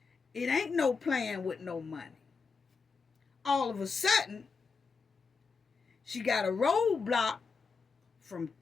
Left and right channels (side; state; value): right; quieter; 5.0 dB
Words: It ain't no playing with no money. All of a sudden, she got a roadblock from